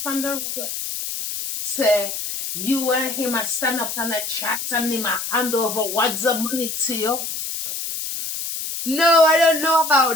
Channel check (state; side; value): noise; left; hiss, 5 dB below the sound